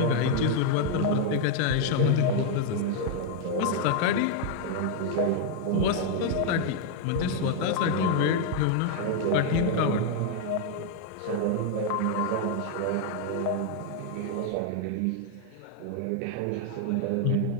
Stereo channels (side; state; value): both; different; correlation 0.00